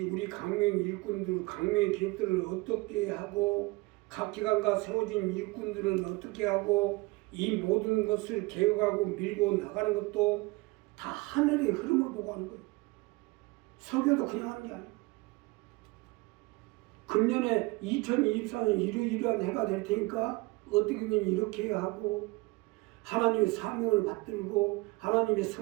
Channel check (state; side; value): quieter; left; 23.8 dB